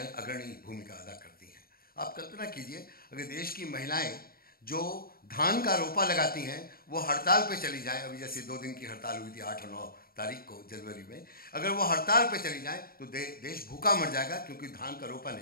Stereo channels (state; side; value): late; right; 0.43 ms